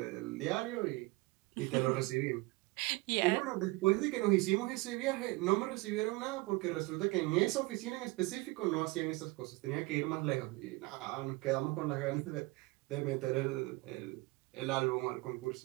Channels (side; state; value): left; quieter; 22.9 dB